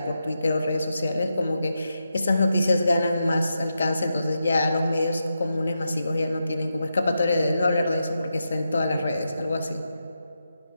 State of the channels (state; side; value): inverted; both; correlation -0.87